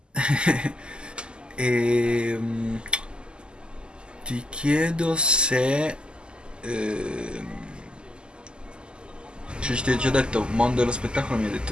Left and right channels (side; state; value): left; late; 0.049 ms